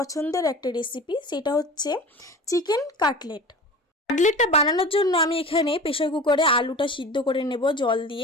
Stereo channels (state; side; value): normal; both; correlation 0.36